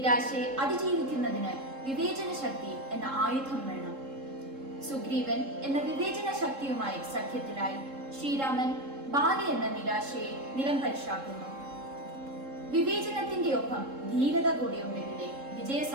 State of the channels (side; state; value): left; late; 3.7 ms